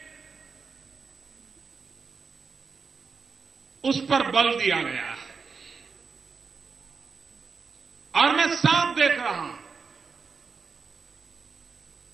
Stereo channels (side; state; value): left; quieter; 5.2 dB